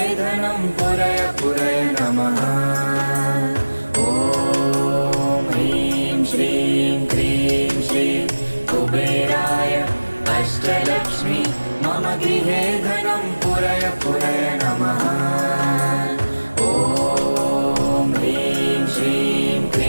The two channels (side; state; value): both; inverted; correlation -1.00